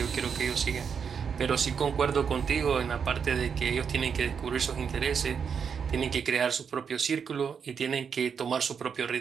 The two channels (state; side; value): quieter; left; 6.7 dB